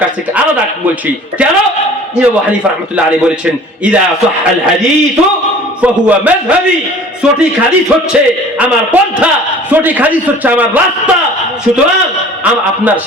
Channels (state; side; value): normal; both; correlation 0.47